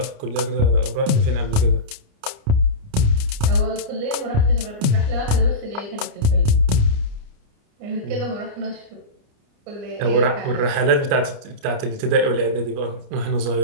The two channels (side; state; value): left; late; 29 ms